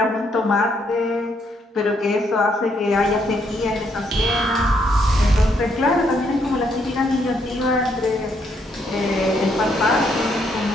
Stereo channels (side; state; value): both; normal; correlation 0.73